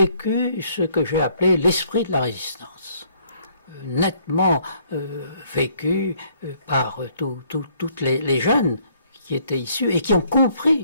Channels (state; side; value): inverted; both; correlation -0.65